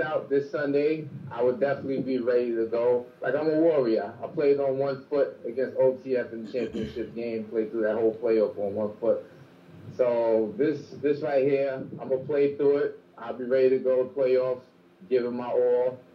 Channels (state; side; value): identical; both; correlation 1.00